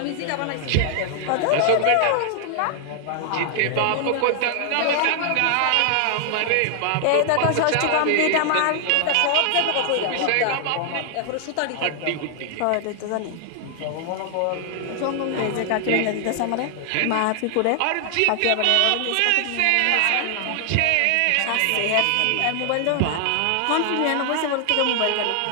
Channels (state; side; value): different; both; correlation 0.00